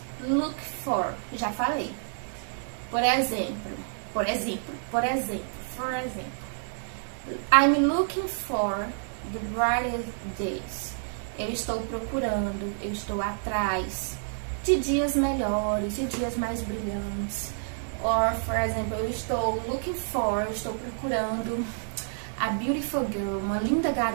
look for. Já falei. Por exemplo. I'm looking for the brightest days. Eu estou procurando, eu estou atrás de dias melhores, de dias mais brilhantes. Or, por exemplo, eu estou procurando a beautiful girl, uma linda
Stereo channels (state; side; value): silent; left; 59 dB below the other